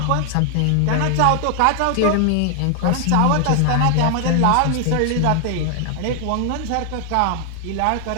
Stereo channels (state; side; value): different; both; correlation 0.00